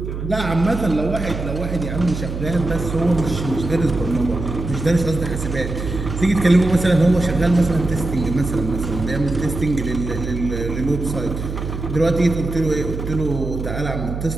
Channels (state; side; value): noise; right; hum, 6 dB below the sound